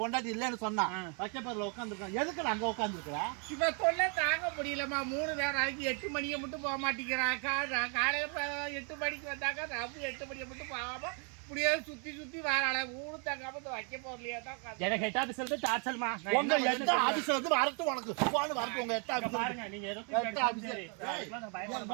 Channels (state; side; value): quieter; left; 38.3 dB